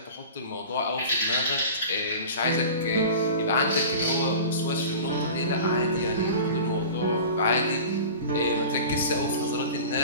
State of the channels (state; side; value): inverted; both; correlation -0.37